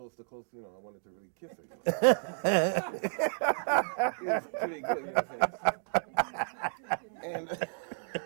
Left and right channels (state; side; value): silent; left; digital silence